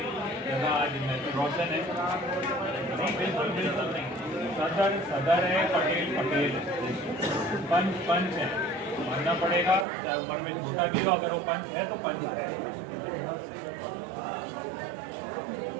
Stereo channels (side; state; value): left; drops out; at 9.9 s